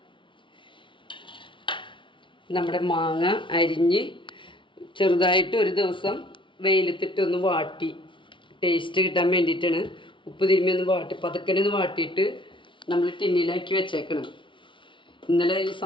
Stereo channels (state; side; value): late; right; 0.24 ms